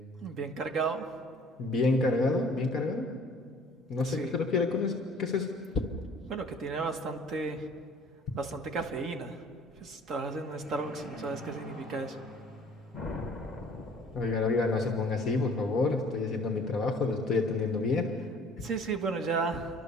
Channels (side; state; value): both; normal; correlation 0.52